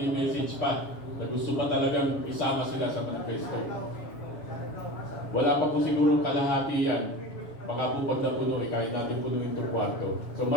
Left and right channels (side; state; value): right; late; 7.1 ms